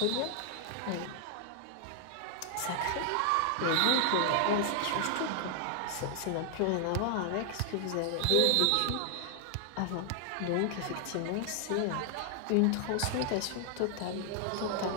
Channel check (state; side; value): different; both; correlation 0.00